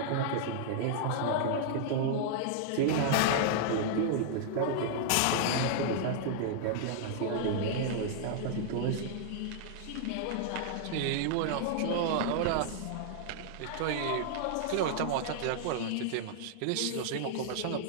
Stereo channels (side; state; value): both; different; correlation -0.01